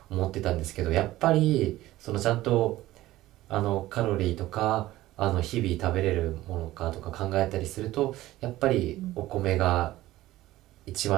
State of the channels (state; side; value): quieter; left; 16.2 dB